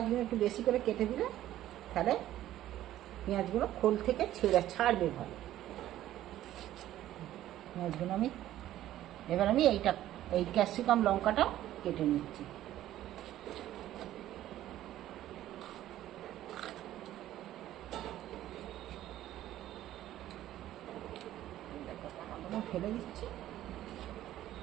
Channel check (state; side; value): quieter; left; 13.3 dB